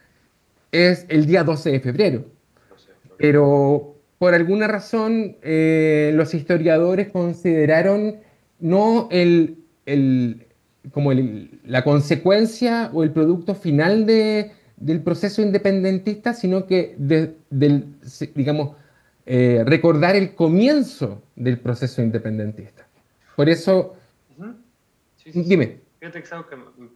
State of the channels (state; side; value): identical; both; correlation 1.00